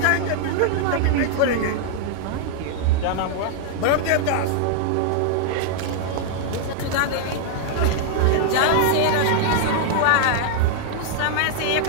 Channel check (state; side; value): different; both; correlation -0.01